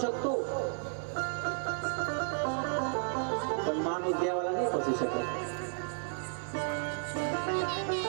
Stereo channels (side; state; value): left; silent; 56 dB below the other